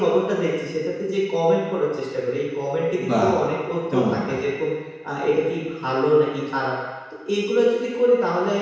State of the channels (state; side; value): identical; both; correlation 1.00